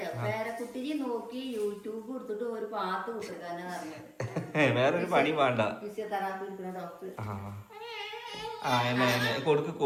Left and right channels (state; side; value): identical; both; correlation 1.00